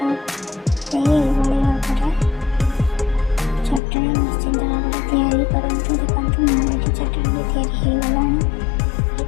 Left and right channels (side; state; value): right; drops out; at 3.8 s